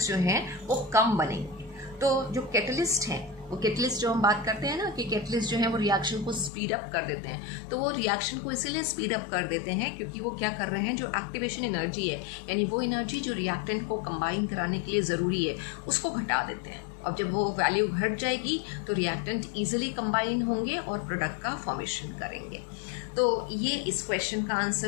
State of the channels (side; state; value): right; drops out; at 6.5 s